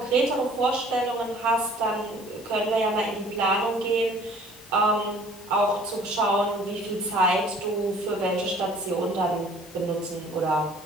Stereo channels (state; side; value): normal; both; correlation 0.52